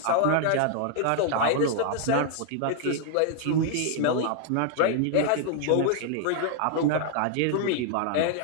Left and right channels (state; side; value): different; both; correlation 0.00